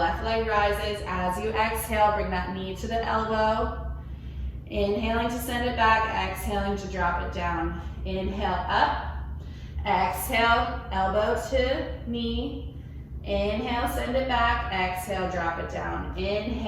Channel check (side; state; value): both; identical; correlation 1.00